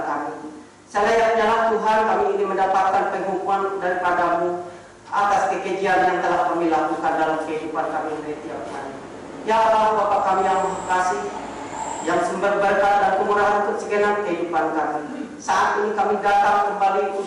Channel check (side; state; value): both; identical; correlation 1.00